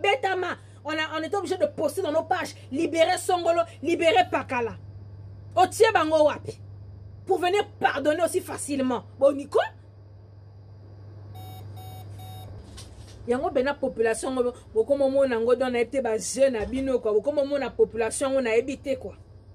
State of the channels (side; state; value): both; identical; correlation 1.00